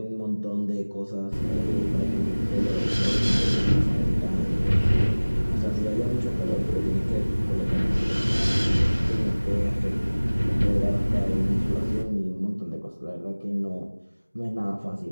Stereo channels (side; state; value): both; inverted; correlation -1.00